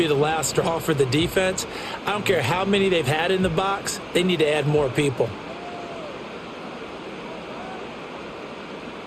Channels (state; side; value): identical; both; correlation 1.00